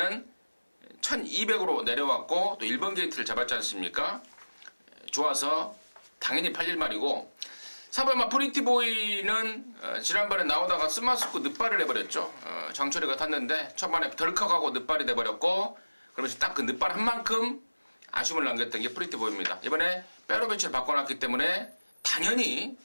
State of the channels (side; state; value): both; inverted; correlation -1.00